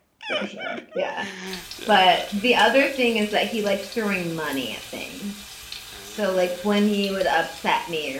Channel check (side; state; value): both; identical; correlation 1.00